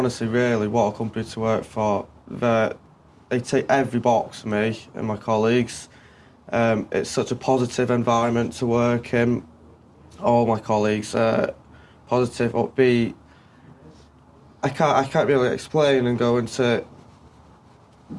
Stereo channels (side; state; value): both; identical; correlation 1.00